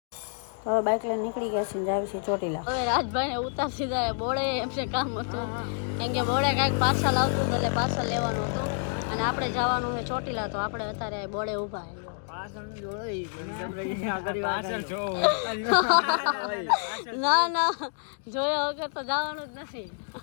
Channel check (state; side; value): silent; right; digital silence